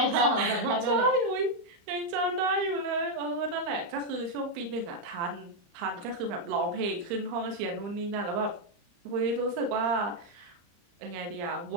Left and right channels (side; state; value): left; late; 34 ms